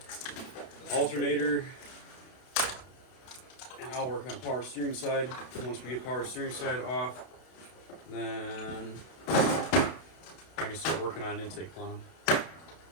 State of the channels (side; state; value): right; late; 32 ms